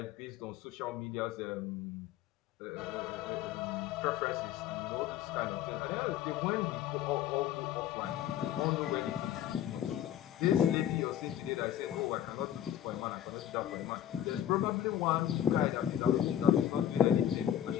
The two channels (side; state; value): right; quieter; 10.8 dB